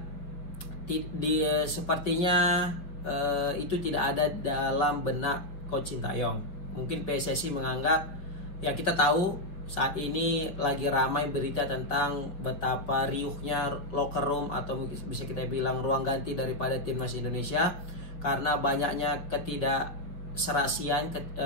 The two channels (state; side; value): late; right; 5.2 ms